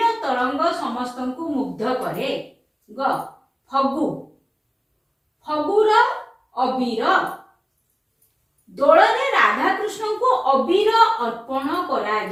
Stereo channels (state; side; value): identical; both; correlation 1.00